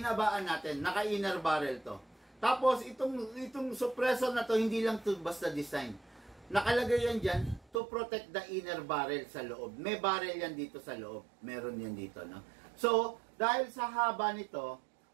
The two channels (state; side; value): drops out; left; at 7.8 s